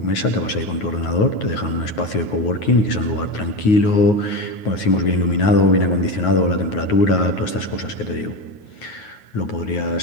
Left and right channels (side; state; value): right; late; 9.4 ms